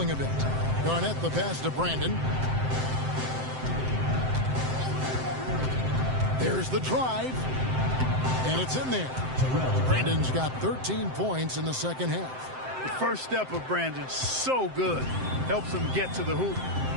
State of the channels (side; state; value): left; late; 7.7 ms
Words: a bit. Garnett the pass to Brandon. There's the drive. And it's in there. Brandon's got 13 points in the second half. The first step of Brandon, so good. Helps him get to the hoop.